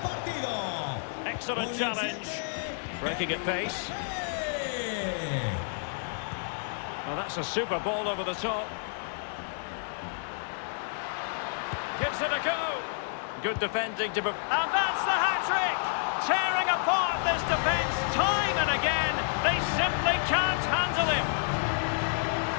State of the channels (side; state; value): right; silent; digital silence